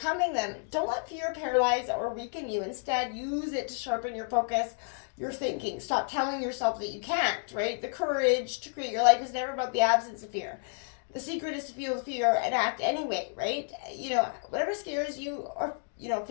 them. Don't let fear paralyze or weaken you. Instead, use it to sharpen your focus, your thinking. Stop telling yourself that you can't, right? The courage to create your life is never about the absence of fear. The secret is to feel the fear and act anyway, right? Whatever scares you, or,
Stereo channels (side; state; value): right; silent; 57 dB below the other